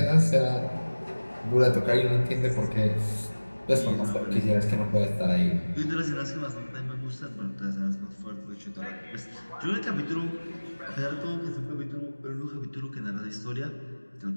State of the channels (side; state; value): both; inverted; correlation -1.00